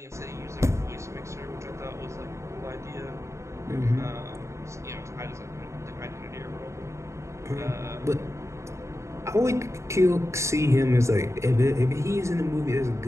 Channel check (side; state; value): left; late; 0.14 ms